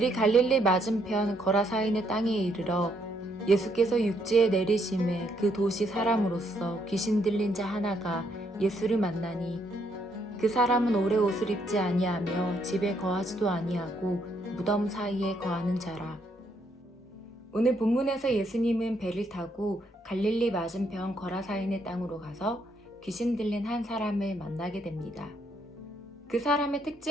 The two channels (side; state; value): both; normal; correlation 0.73